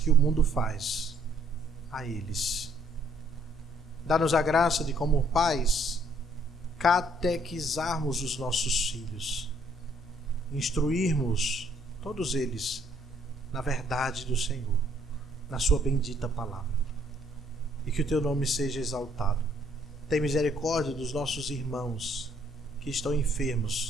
o mundo faz a eles. Dá-nos a graça de, como pais, catequizarmos os nossos filhos, instruirmos todos eles na verdade do Senhor, na sua bendita palavra, e que o teu nome seja exaltado. Tem misericórdia dos nossos irmãos que estão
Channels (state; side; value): normal; both; correlation 0.65